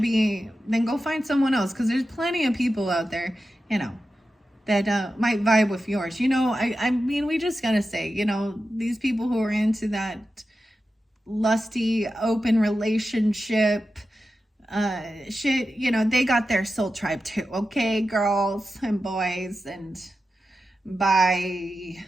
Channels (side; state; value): both; normal; correlation 0.91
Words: be, then go find someone else. Because there's plenty of people out there, you know, that might vibe with yours. You know, I mean, we just got to say, you know, these people who are into that lusty, open relationship shit, you know, they got their soul tribe too. Okay, girls and boys, and bye.